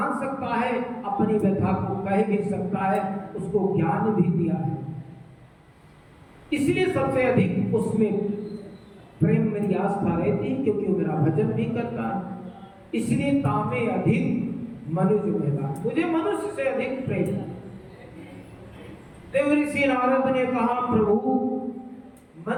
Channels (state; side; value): identical; both; correlation 1.00